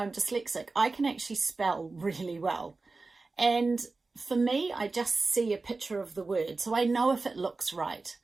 dyslexic, I can actually spell really well. And for me, I just see a picture of the word, so I know if it looks right.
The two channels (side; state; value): left; quieter; 3.7 dB